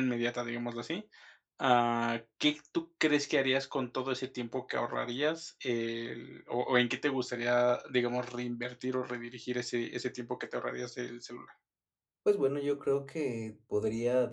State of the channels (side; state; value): both; identical; correlation 1.00